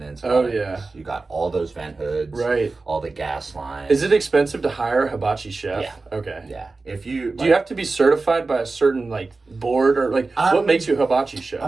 You got all those vent hoods. Right. All the gas lines. Is it expensive to hire a hibachi chef? Yeah. Okay. Yeah. Do you have to be certified by a certain board, or what makes you a hibachi chef?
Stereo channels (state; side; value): quieter; left; 3.7 dB